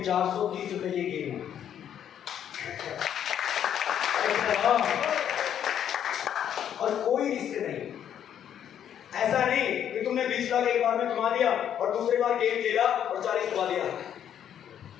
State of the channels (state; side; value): quieter; right; 9.6 dB